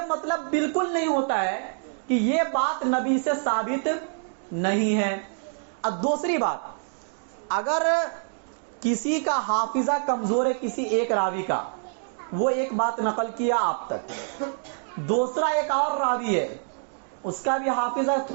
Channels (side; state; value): left; silent; digital silence